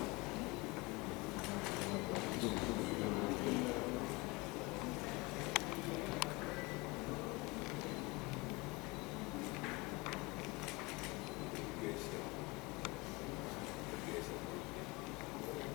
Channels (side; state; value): right; quieter; 25.0 dB